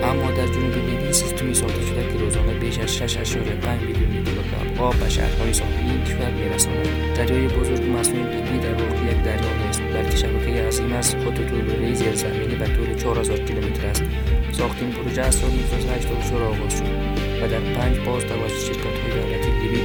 اما در جنوب لیبی سیستمی ساخته شده که روزانه بیش از 6.5 میلیون لیتر آب به شهرهای ساحلی این کشور می‌رساند. دریای بزرگ مصنوعی لیبی در واقع یک دریا نیست، بلکه شبکه عظیم از خطوط لوله‌ای زیرزمینی به طول 4000 کیلومتر است. ساخت این پروژه از سال 1984 آغاز شد و در 5 فاز توسط شرکت‌های دولتی لیبی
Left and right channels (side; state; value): both; identical; correlation 1.00